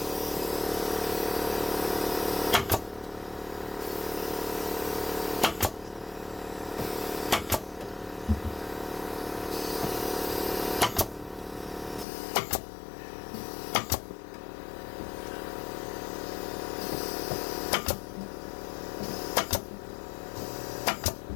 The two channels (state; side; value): drops out; right; at 12.1 s